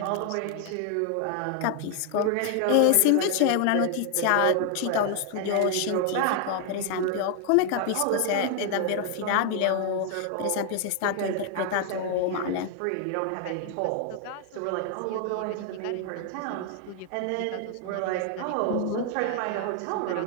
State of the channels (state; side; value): different; both; correlation 0.00